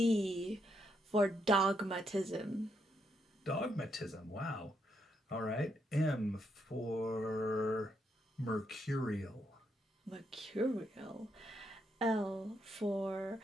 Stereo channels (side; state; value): both; normal; correlation 0.78